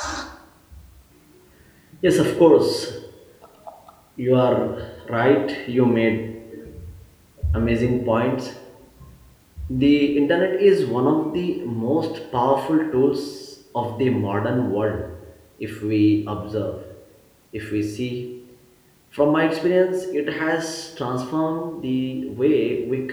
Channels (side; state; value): both; identical; correlation 1.00